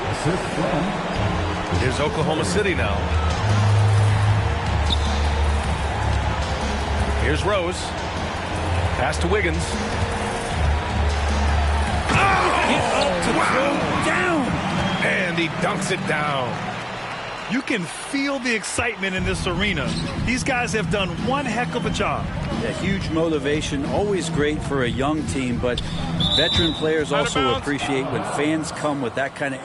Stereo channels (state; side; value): identical; both; correlation 1.00